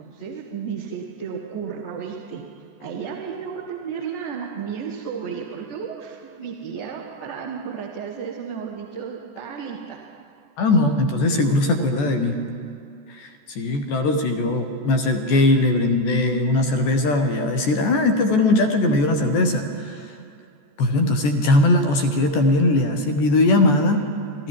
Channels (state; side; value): late; right; 14 ms